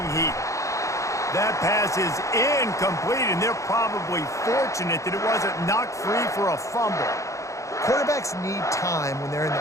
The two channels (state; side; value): late; right; 0.15 ms